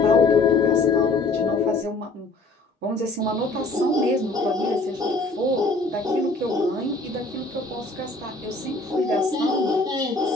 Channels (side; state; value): right; quieter; 3.2 dB